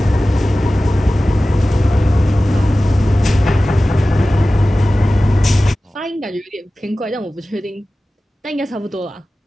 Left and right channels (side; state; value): both; normal; correlation 0.96